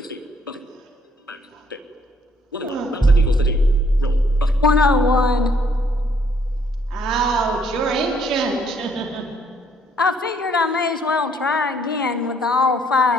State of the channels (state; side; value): normal; both; correlation 0.66